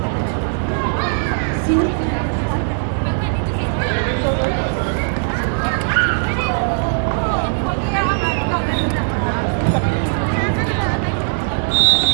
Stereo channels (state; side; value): silent; left; digital silence